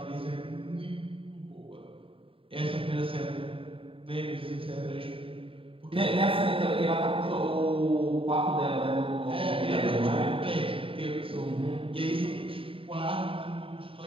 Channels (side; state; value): left; late; 0.26 ms